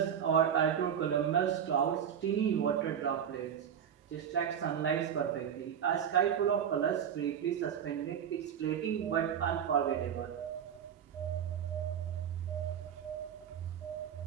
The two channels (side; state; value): left; quieter; 8.6 dB